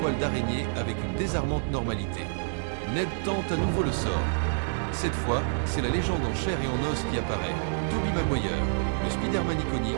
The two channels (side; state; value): left; silent; digital silence